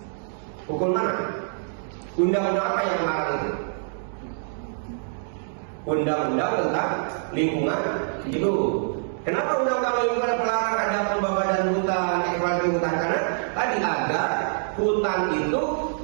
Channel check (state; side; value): silent; left; digital silence